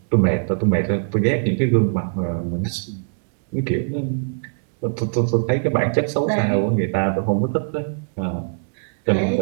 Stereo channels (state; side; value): silent; left; digital silence